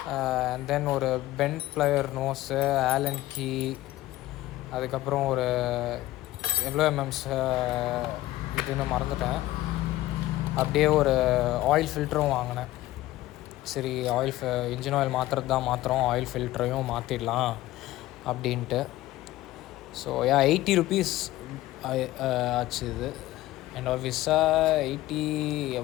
And then ஒரு bent plier nose, Allen key, அதுக்கப்புறம் ஒரு எவ்வளோ எம்எம்ஸ் இதுன்னு மறந்துட்டேன். அப்படியே ஒரு ஆயில் ஃபில்டரும் வாங்கினேன். சரி, இன்ஜின் ஆயில் மாற்றுறது தான் மாற்றுறோம், ஆயில் ஃபில்டரையும் மாற்றிடலாம் அப்படின்ட்டு. ஸோ 80 rupees ஆச்சு இது. அண்ட் ஆஃபீஸாக 80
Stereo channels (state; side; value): quieter; right; 16.3 dB